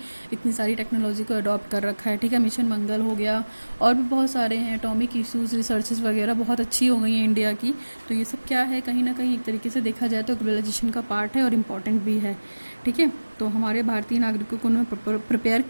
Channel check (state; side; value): inverted; both; correlation -1.00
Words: इतनी सारी टेक्नोलॉजी को अडॉप्ट कर रखा है। ठीक है, मिशन मंगल हो गया और भी बहुत सारे हैं, एटॉमिक इश्यूज़ रिसर्चेस वगैरह बहुत अच्छी हो गई हैं इंडिया की। तो ये सब क्या है, कहीं ना कहीं एक तरीके से देखा जाए तो ग्लोबलाइजेशन का पार्ट है और इम्पॉर्टेंट भी है। ठीक है, तो हमारे भारतीय नागरिकों को उन्होंने प्रिपेयर